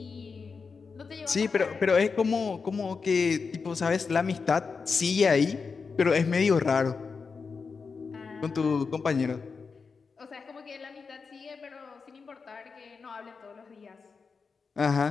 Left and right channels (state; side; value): quieter; right; 5.1 dB